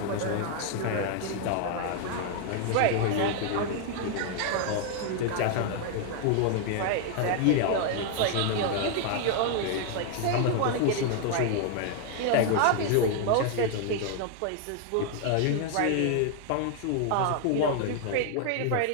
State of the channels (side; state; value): both; different; correlation 0.00